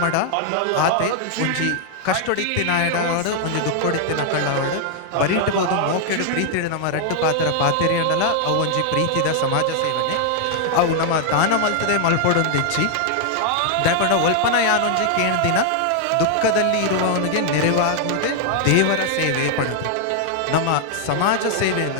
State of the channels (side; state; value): both; different; correlation 0.00